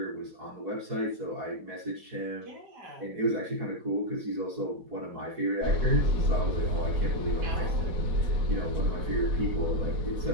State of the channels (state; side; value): late; left; 4.6 ms